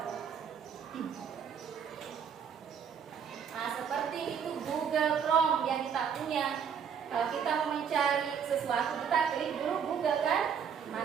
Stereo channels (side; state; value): left; quieter; 7.4 dB